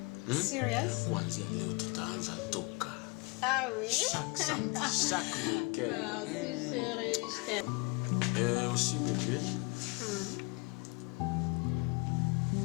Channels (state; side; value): quieter; right; 29.1 dB